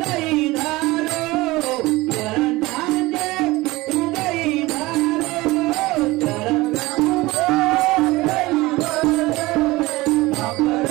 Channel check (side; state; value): left; quieter; 20.3 dB